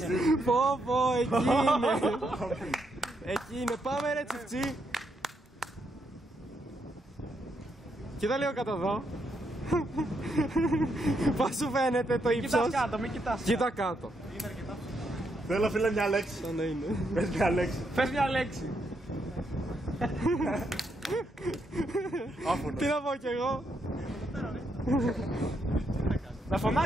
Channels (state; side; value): normal; both; correlation 0.78